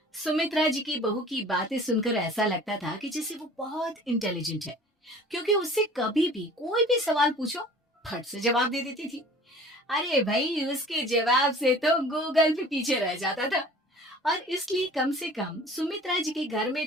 सुमित्रा जी की बहू की बातें सुनकर ऐसा लगता था कि जैसे वो बहुत इंटेलिजेंट है, क्योंकि उससे कभी भी कोई भी सवाल पूछो फट से जवाब दे देती थी। अरे भाई, उसके जवाब से तो गूगल भी पीछे रह जाता था। और इसलिए कम से कम सुमित्रा जी के घर में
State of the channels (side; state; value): both; normal; correlation 0.46